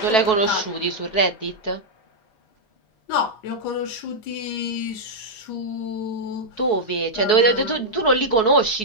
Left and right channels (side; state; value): right; late; 4.7 ms